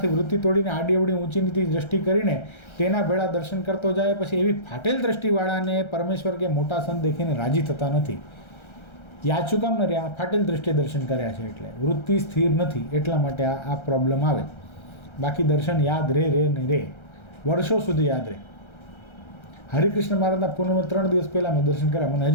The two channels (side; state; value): right; late; 1.3 ms